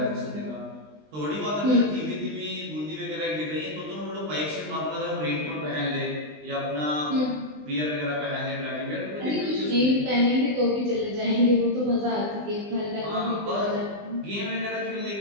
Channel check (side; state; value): left; late; 20 ms